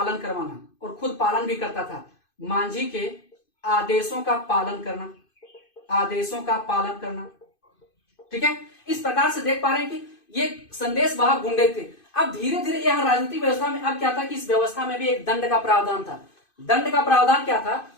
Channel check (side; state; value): right; late; 2.5 ms